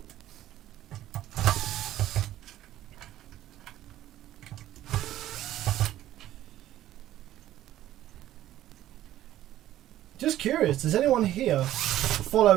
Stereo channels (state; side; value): quieter; left; 13.4 dB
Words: Just curious, does anyone here